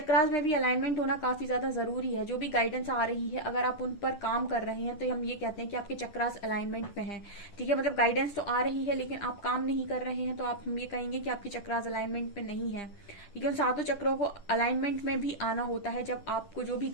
में भी अलाइनमेंट होना काफी ज्यादा जरूरी है। जो भी गाइडेंस आ रही है, अगर आप उन पर काम कर रहे हैं तो हम ये कहते हैं कि आपके चक्रास अलाइनमेंट में हैं। ठीक है, मतलब गाइडेंस तो आ रही है लेकिन आप काम नहीं कर रहे हैं, तो आप हम ये कहेंगे कि आपकी चक्रास अलाइनमेंट में नहीं है। ठीक है, उन सातों चक्रों को अलाइनमेंट में भी आना होता है जब आपको जो भी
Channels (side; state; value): right; late; 10 ms